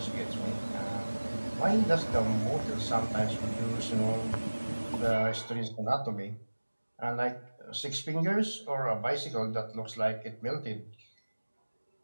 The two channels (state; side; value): inverted; both; correlation -1.00